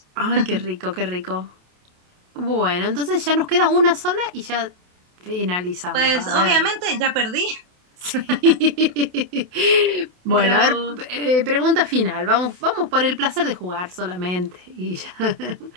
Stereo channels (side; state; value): left; late; 28 ms